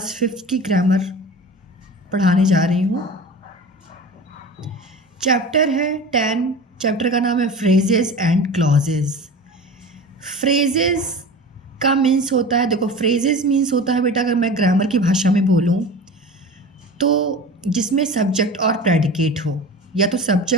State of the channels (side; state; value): both; normal; correlation 0.34